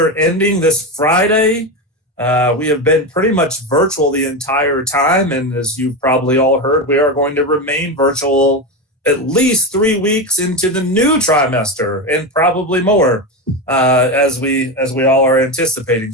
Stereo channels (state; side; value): normal; both; correlation 0.16